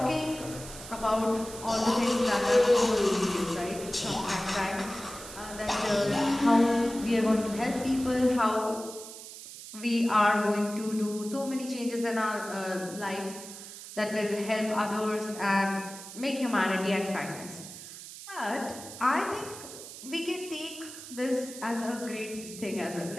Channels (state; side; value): noise; right; hiss, 13 dB below the sound